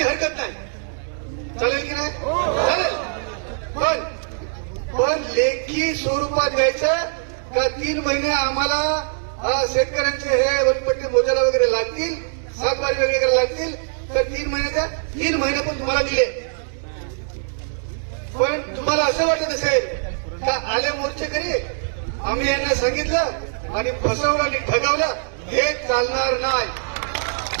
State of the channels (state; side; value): silent; left; 64 dB below the other